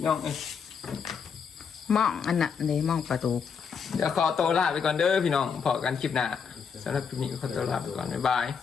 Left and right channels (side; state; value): right; quieter; 6.4 dB